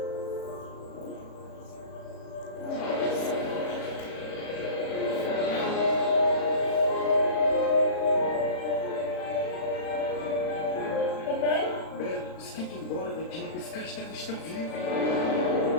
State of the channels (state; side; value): late; right; 36 ms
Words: Bela, você tem que ir embora daqui. Esse castelo está vivo.